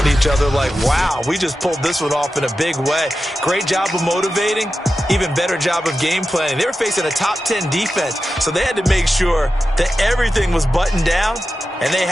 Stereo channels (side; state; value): both; normal; correlation 0.92